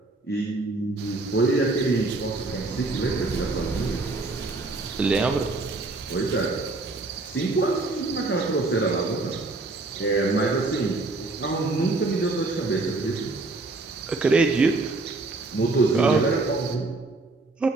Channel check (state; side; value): quieter; left; 3.3 dB